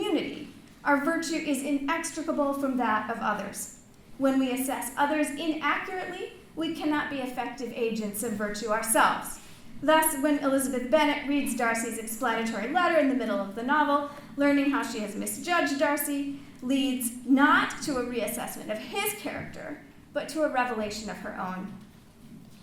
our virtue is inextricable from that of others. When we assess others inaccurately, we cannot be effective agents of virtue ourselves. Thus, when Elizabeth Bennet reads Darcy's explanatory letter in the middle of the novel, learning how she has misjudged Darcy leads not to a reassessment of his character, but to a revelation of her own.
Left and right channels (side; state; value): both; identical; correlation 1.00